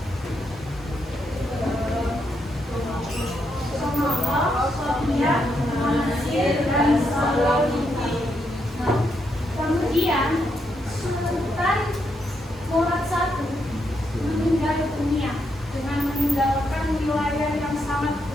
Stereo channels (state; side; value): normal; both; correlation 0.80